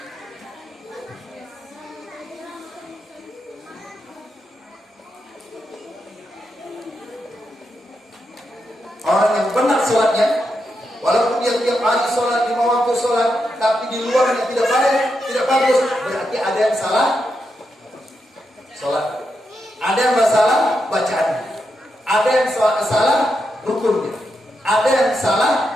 Orang yang benar sholatnya, walaupun dia tiap hari sholat, 5 waktu sholat, tapi di luarnya tidak baik, tidak bagus, berarti ada yang salah sholat. Ada yang salah bacaannya. Ada yang salah rukunnya. Ada yang salah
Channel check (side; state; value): both; normal; correlation 0.84